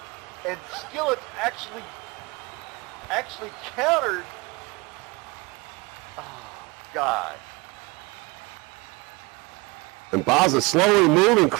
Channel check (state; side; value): quieter; left; 25.1 dB